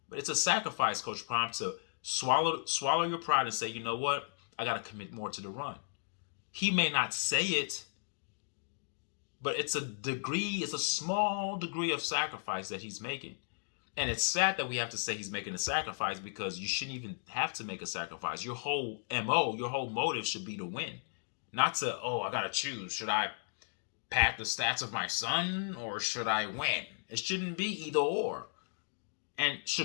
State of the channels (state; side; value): silent; right; digital silence